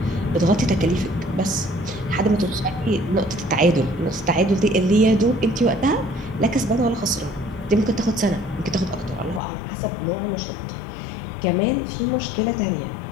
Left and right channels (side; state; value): right; drops out; at 9.4 s